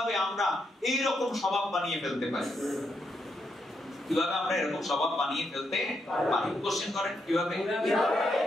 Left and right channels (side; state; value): both; normal; correlation 0.80